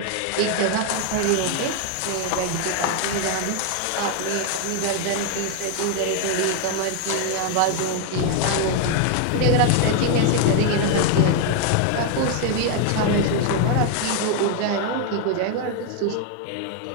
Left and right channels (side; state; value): both; different; correlation 0.01